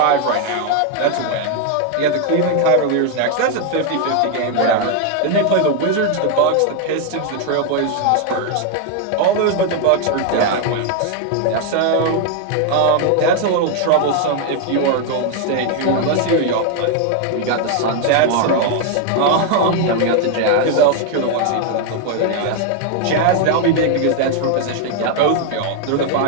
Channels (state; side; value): different; both; correlation 0.00